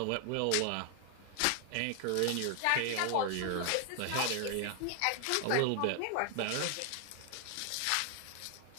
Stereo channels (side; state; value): both; different; correlation 0.00